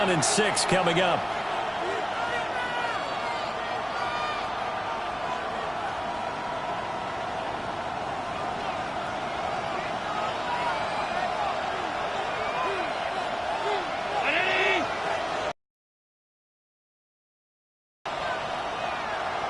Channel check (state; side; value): identical; both; correlation 1.00